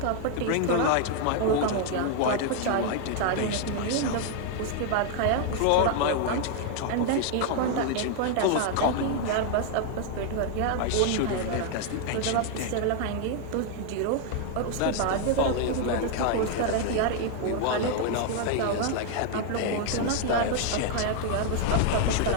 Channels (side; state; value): both; different; correlation 0.00